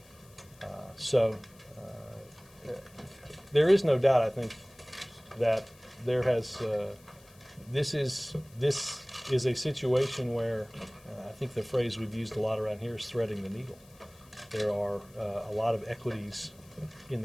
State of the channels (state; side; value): noise; left; hiss, 26 dB below the sound